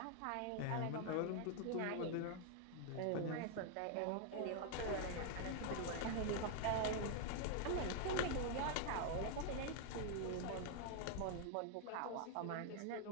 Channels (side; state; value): both; different; correlation 0.00